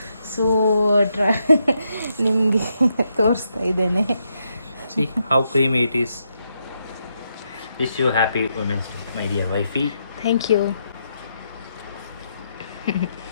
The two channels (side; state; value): both; inverted; correlation -0.80